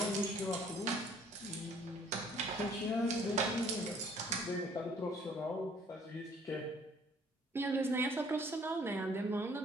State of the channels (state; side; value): normal; both; correlation 0.58